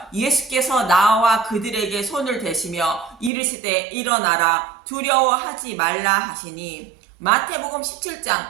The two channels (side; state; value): left; drops out; at 3.3 s